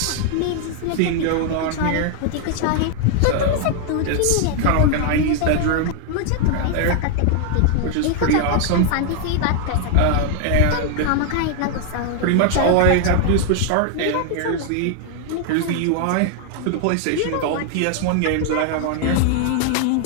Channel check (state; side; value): different; both; correlation 0.00